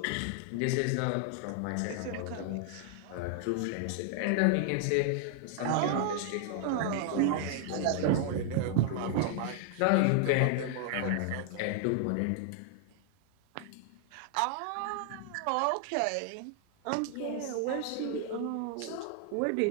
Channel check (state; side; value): different; both; correlation 0.00